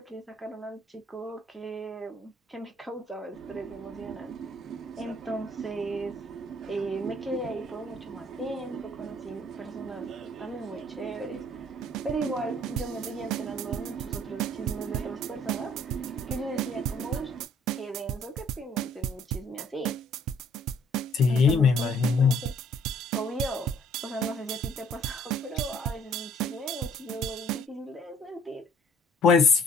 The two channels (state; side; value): normal; both; correlation 0.59